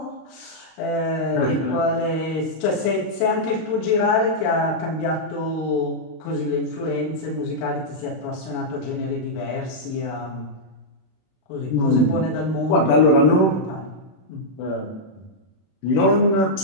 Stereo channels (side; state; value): right; late; 31 ms